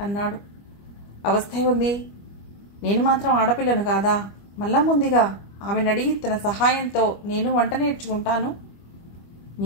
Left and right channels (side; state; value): right; late; 25 ms